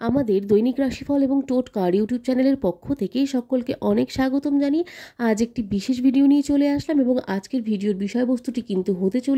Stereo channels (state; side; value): identical; both; correlation 1.00